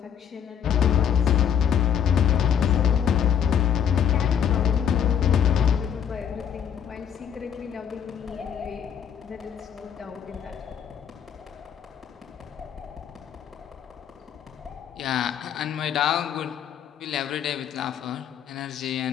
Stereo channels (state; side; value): quieter; right; 8.5 dB